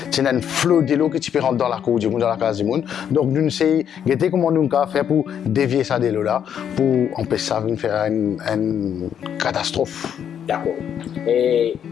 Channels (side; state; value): right; quieter; 8.8 dB